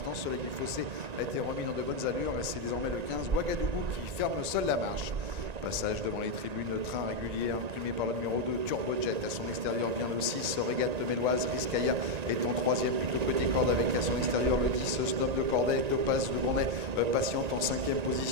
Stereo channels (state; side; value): late; left; 1.9 ms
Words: Soleil du Fossé a été remis dans de bonnes allures et c'est désormais le 15 Ouagadougou qui ferme seul la marche. Passage devant les tribunes, train régulier imprimé par le numéro 2 Turbojet. À son extérieur vient le 6 Régate Méloise. Rizkaya est en troisième plutôt côté corde avec à son extérieur le 10 Snob de Corday. Topaz de Gournay patiente en cinquième